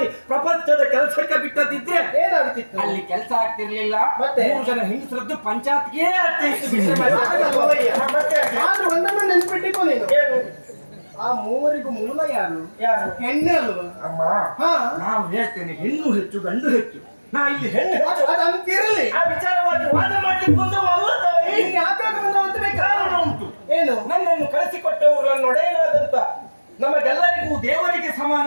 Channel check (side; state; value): both; inverted; correlation -1.00